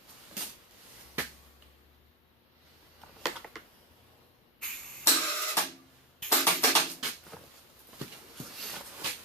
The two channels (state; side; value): normal; both; correlation 0.10